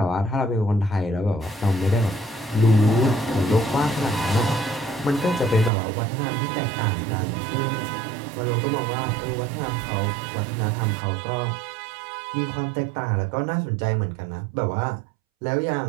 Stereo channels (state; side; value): drops out; left; at 5.7 s